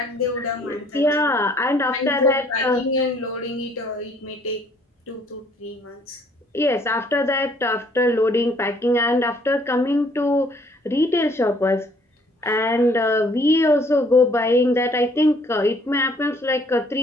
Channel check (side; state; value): both; normal; correlation 0.61